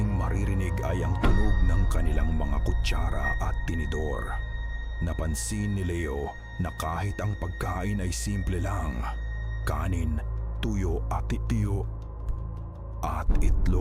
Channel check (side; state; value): both; identical; correlation 1.00